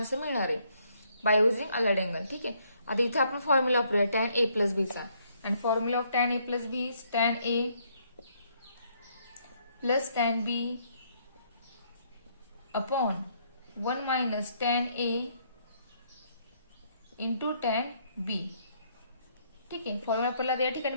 मिळणार आहे बाय युझिंग अलाइड अँगल. ठीक आहे, आता इथे आपण फॉर्म्युला वापरूया tan a प्लस बीचा, आणि formula of tan a plus B is tan a plus tan b upon 1 minus tan a into tan b. ठीक आहे, फॉर्म्युला आपल्याला या ठिकाणी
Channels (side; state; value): both; inverted; correlation -0.69